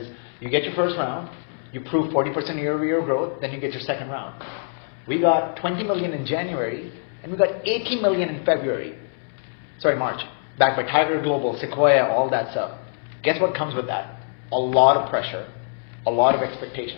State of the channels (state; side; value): silent; right; digital silence